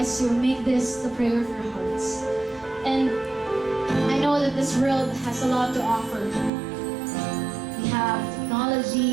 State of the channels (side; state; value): left; drops out; at 6.5 s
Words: to make this the prayer of your hearts. And I know that this world has a lot to offer. We have